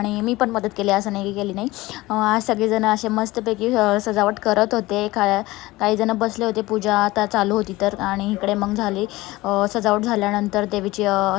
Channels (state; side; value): quieter; right; 19.5 dB